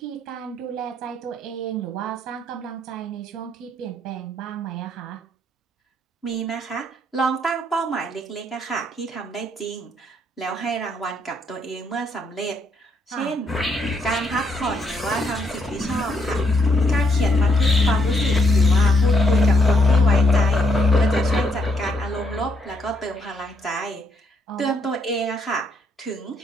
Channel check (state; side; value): normal; both; correlation 0.73